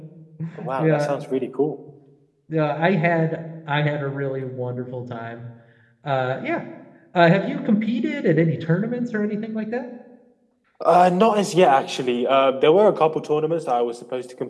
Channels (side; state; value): both; identical; correlation 1.00